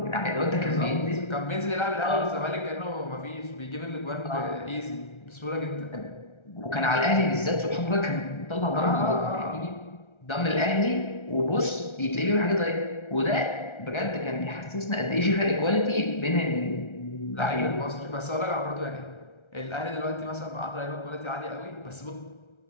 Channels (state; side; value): late; right; 1.3 ms